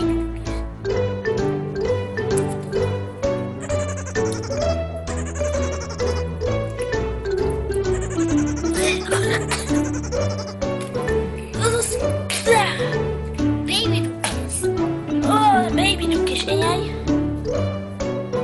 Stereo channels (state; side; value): identical; both; correlation 1.00